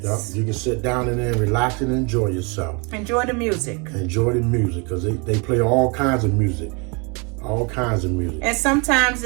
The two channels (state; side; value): quieter; left; 31.9 dB